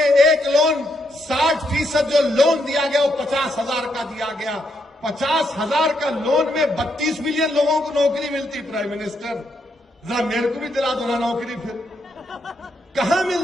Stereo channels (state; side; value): normal; both; correlation 0.78